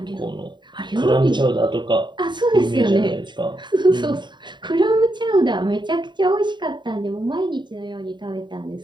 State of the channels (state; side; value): late; left; 0.22 ms